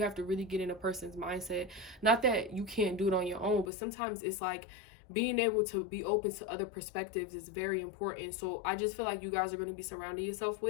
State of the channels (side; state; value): right; drops out; at 3.7 s